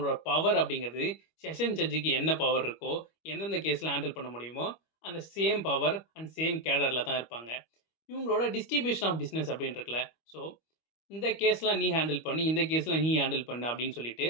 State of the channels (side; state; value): right; late; 25 ms